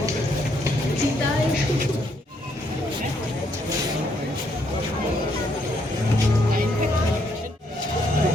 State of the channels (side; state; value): both; normal; correlation 0.73